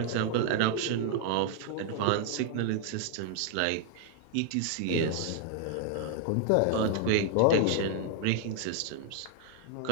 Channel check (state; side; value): different; both; correlation 0.00